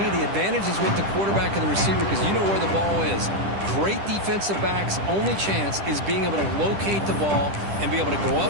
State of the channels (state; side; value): late; left; 10 ms